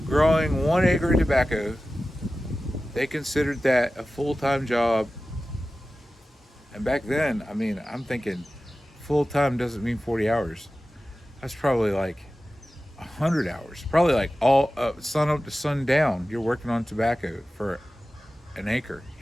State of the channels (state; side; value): normal; both; correlation 0.95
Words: growing 1 acre of tobacco, they considered that a full-time job. And back then, I mean, I'm thinking full-time doesn't mean 40 hours. That's probably like 100 hours. Probably like all sun up to sundown, you're working on tobacco for an acre,